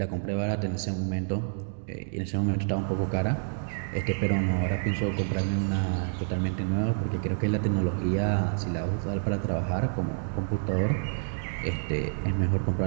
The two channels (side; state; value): left; silent; digital silence